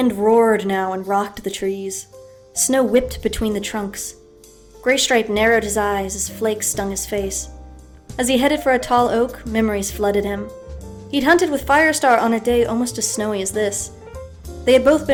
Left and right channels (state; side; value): identical; both; correlation 1.00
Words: roared now and rocked the trees. Snow whipped between the trunks. Graystripe narrowed his eyes as flakes stung his face. As he headed for a tall oak, memories flooded him. He'd hunted with Firestar on a day almost as snowy as this. They had both